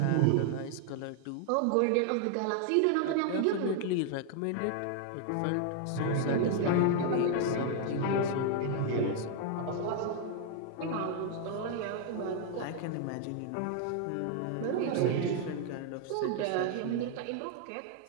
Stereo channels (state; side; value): different; both; correlation 0.00